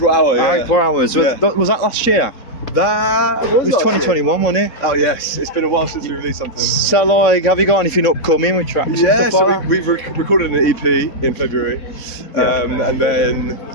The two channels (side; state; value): right; late; 4.1 ms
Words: Hour, yeah. April Hours. Yeah. Was that last year? That It was 2021, wasn't it? Oh yes, it's been a while since we released something. So like, have you got anything upcoming with tracks? Yeah, and so stuff like that? we've recorded an EP in February, and then